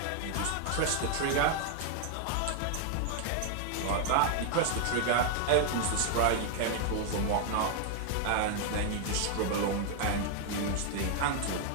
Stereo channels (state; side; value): different; both; correlation 0.00